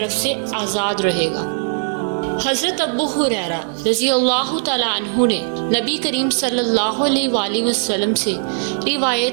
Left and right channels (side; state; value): left; silent; digital silence